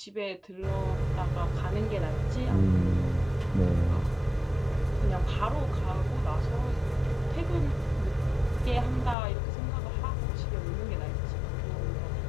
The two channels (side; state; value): right; drops out; at 9.2 s